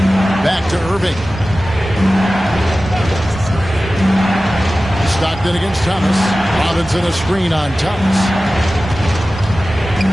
Back to Irving. Stockton against Thomas. Robinson a screen on Thomas.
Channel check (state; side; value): normal; both; correlation 0.96